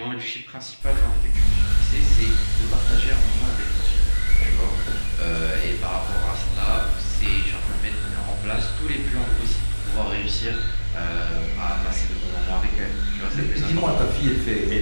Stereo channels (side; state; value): both; inverted; correlation -1.00